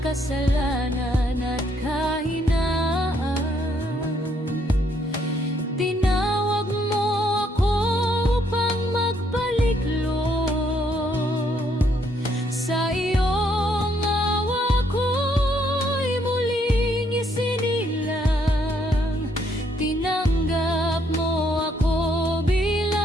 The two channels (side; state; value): both; normal; correlation 0.71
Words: kasalanan at kahinaan, tinawag mo ako upang magpaliklog. Sa iyong awa ko'y muling isinilang. Tinanggap mo ako